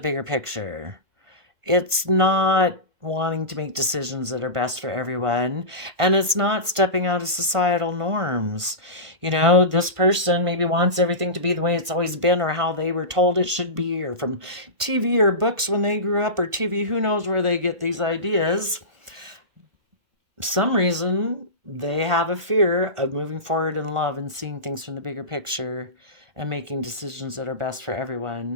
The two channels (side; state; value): left; late; 1.5 ms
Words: picture. It's not wanting to make decisions that are best for everyone, and it's not stepping out of societal norms. You know, this person maybe wants everything to be the way it's always been or how they were told it should be, or from TV or books when they grew up, or TV, who knows where they get these ideas. Some reason they have a fear of moving forward in love and seeing things from the bigger picture and making decisions that are best for